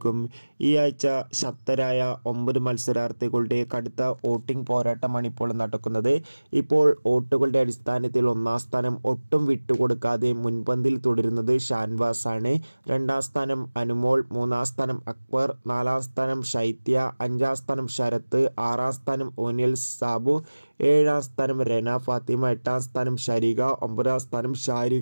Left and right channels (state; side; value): inverted; both; correlation -1.00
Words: ഈ ആഴ്ച ശക്തരായ 9 മത്സരാർത്ഥികളുടെ കടുത്ത വോട്ടിംഗ് പോരാട്ടമാണ് ഇപ്പോൾ നടക്കുന്നത്. ഇപ്പോൾ വോട്ടുകളുടെ അടിസ്ഥാനത്തിൽ ഒന്നാം സ്ഥാനം ഒട്ടും വിട്ടുകൊടുക്കാതെ മുൻപന്തിൽ തുടരുന്നത് ഷാൻവാസ് ആണ്. രണ്ടാം സ്ഥാനം അനുമോൾ, മൂന്നാം സ്ഥാനം അക്ബർ, നാലാം സ്ഥാനം ശൈത്യ, അഞ്ചാം സ്ഥാനം ശരത്ത്, ആറാം സ്ഥാനം ഓനിയൽ സാബു, ഏഴാം സ്ഥാനം റെന ഫാത്തിമ, എട്ടാം സ്ഥാനം ഷരിക, ഒമ്പതാം സ്ഥാനം